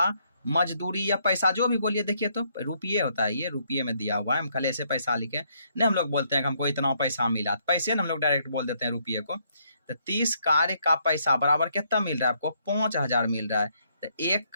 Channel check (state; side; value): inverted; both; correlation -0.71